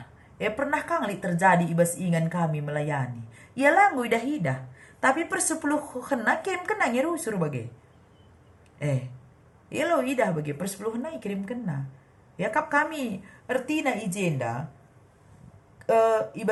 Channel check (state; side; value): identical; both; correlation 1.00